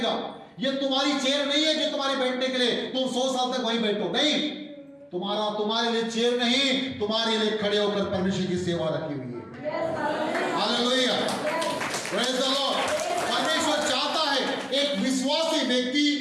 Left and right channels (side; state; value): both; identical; correlation 1.00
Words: ये तुम्हारी चेयर नहीं है जो तुम्हारे बैठने के लिए तुम 100 साल तक वहीं बैठो, नहीं। तुम्हारे लिए चेयर नहीं, तुम्हारे लिए खड़े होकर परमेश्वर की सेवा रखी हुई है। Hallelujah, praise the Lord. परमेश्वर चाहता है एक विश्वासी व्यक्ति